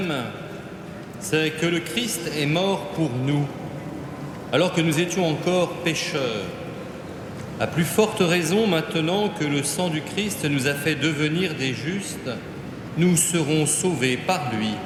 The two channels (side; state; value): both; identical; correlation 1.00